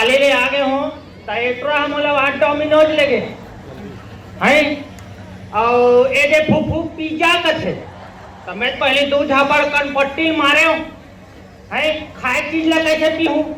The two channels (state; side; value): identical; both; correlation 1.00